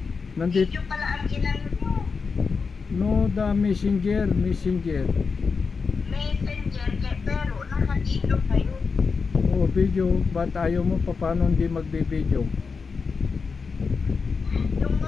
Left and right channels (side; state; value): right; quieter; 5.0 dB